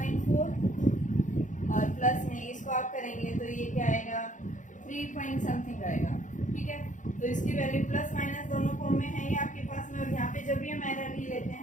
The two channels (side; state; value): right; late; 0.37 ms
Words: और प्लस में इसको आप करेंगे तो ये क्या आएगा, 3 पॉइंट समथिंग आएगा। ठीक है, तो इसकी वैल्यू प्लस माइनस दोनों फॉर्म में है ये आपके पास में, और यहाँ पे जब भी हम एरर ही लेते